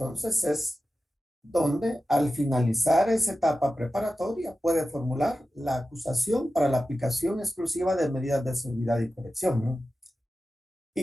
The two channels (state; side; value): normal; both; correlation 0.93